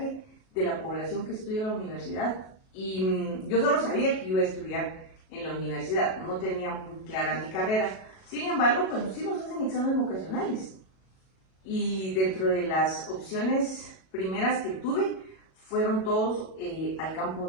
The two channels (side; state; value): right; late; 37 ms